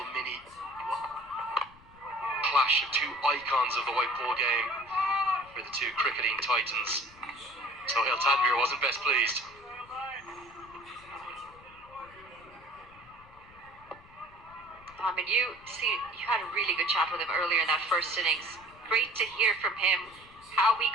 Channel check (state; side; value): noise; left; rumble, 25 dB below the sound